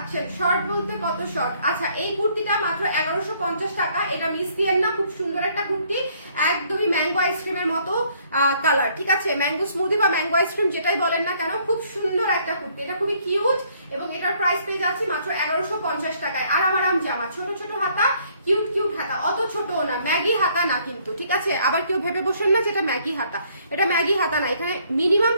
শর্ট বলতে কত শর্ট। আচ্ছা, এই কুর্তিটা মাত্র 1150 টাকা। এটা মিস দিয়েন না, খুব সুন্দর একটা কুর্তি, একদমই ম্যাঙ্গো আইসক্রিমের মতো কালার, ঠিক আছে, ম্যাঙ্গো স্মুদি বা ম্যাঙ্গো আইসক্রিম যেটাই বলেন না কেন, খুব সুন্দর একটা কুর্তি, এটা খুবই কিউট, এবং এটার প্রাইস পেয়ে যাচ্ছি মাত্র 1150 টাকায়। আরাম জামা, ছোট হাতা, কিউট হাতা, অত ছোটও না, ম্যাগি হাতা না কিন্তু, ঠিক আছে, আবার কেউ ভেবে বসেন না যে এটা ম্যাগি হাতা, এটা ম্যাগি হাতা না, এখানে মিনিমাম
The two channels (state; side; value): inverted; both; correlation -0.65